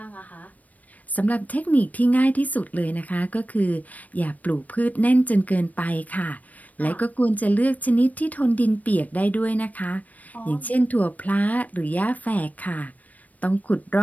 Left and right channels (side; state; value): right; late; 0.074 ms